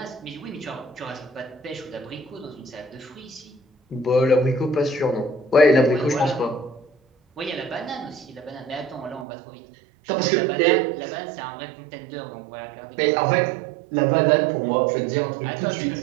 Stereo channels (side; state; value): left; drops out; at 9.2 s